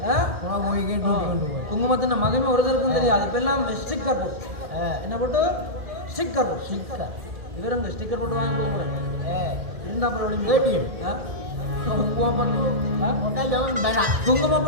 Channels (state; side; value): late; left; 1.7 ms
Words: குங்குமத்தின் மகமே ஒருத்தருக்கும் தெரியாது இப்ப எல்லாம் ஸ்டிக்கர் போட்டு என்ன போட்டு ஸ்டிக்கர் இவருங்க ஸ்டிக்கர் போட்டு வாங்கி கொடுக்குறேன் இருந்தா குங்குமம்